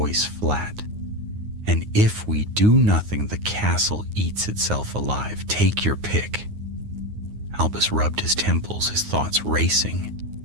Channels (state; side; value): late; left; 9.6 ms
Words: flat. "And if we do nothing, the castle eats itself alive. Take your pick." Albus rubbed his temples, his thoughts racing.